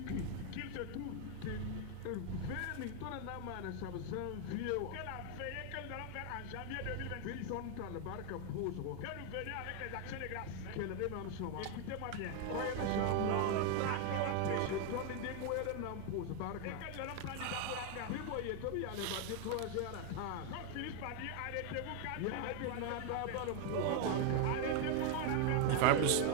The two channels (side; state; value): both; different; correlation 0.01